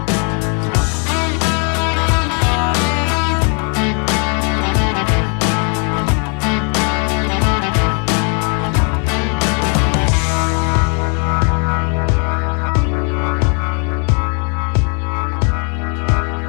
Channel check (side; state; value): right; quieter; 37.4 dB